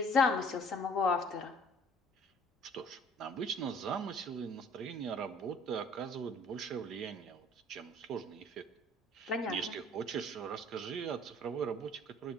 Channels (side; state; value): both; normal; correlation 0.54